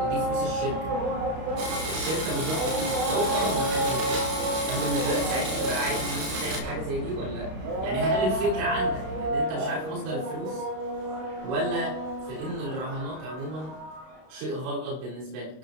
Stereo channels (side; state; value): left; late; 32 ms